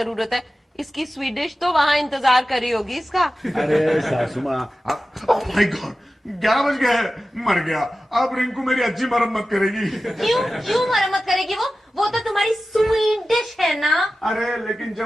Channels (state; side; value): normal; both; correlation 0.94